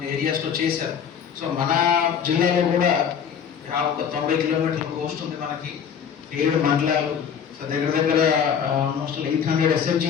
ఏరియాస్లో చేశారు. సో మన జిల్లాలో కూడా ఒక 90 కిలోమీటర్ల కోస్ట్ ఉంది మనకి, 7 మండలాలు. సో దగ్గర ఆల్మోస్ట్ 800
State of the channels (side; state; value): right; quieter; 7.7 dB